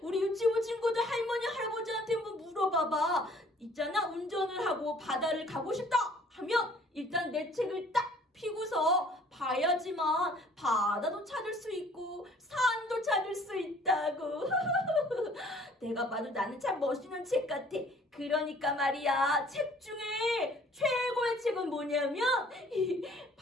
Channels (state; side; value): normal; both; correlation 0.56